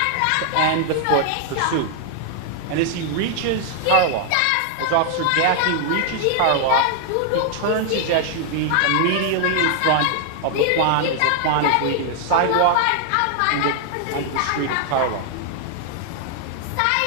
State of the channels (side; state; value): both; different; correlation 0.00